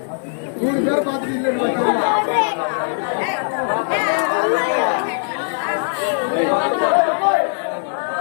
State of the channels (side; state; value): right; silent; digital silence